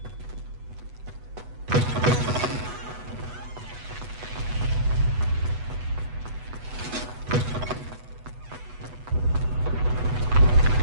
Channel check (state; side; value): late; left; 8.1 ms